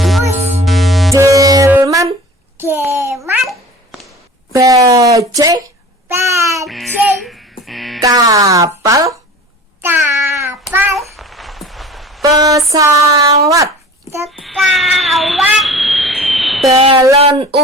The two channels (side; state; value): both; normal; correlation 0.41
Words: delman, delman, bajai, bajai, kapal, kapal, pesawat, pesawat, balon